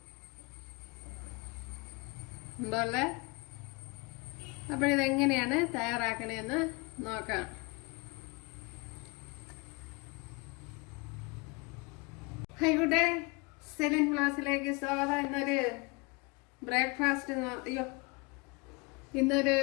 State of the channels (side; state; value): right; quieter; 28.0 dB